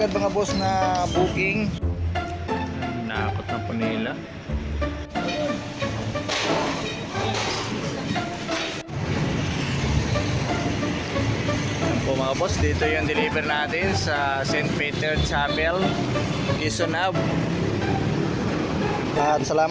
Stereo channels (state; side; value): identical; both; correlation 1.00